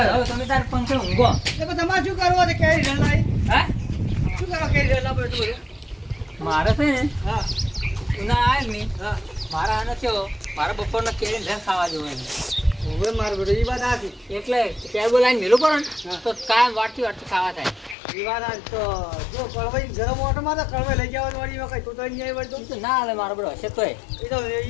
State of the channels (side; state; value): right; drops out; at 17.9 s